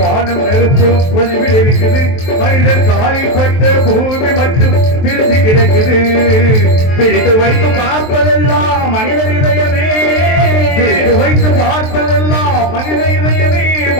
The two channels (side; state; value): right; late; 23 ms